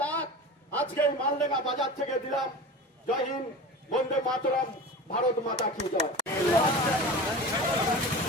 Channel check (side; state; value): both; normal; correlation 0.32